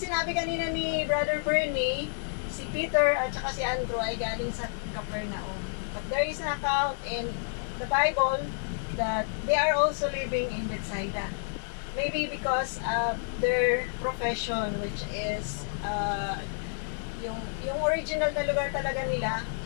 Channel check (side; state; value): right; silent; digital silence